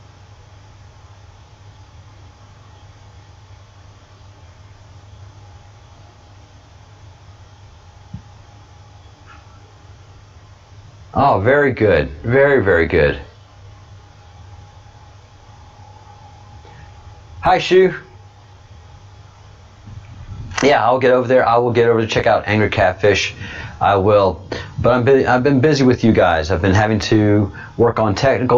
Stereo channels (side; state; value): both; identical; correlation 1.00